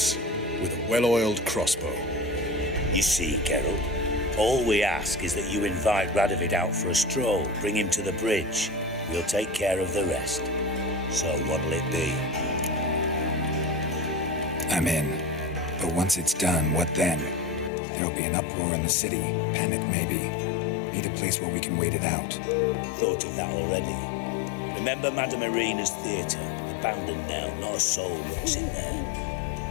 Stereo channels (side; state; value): right; drops out; at 17.7 s